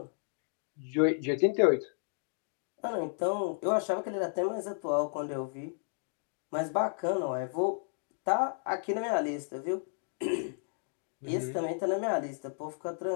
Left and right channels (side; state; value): right; silent; digital silence